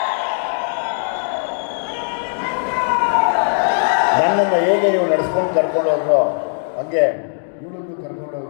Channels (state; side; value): silent; right; digital silence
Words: ನನ್ನನ್ನು ಹೇಗೆ ನೀವು ನಡೆಸ್ಕೊಂಡು ಕರ್ಕೊಂಡು ಹೋದ್ರೋ ಹಾಗೆ ಇವಳನ್ನು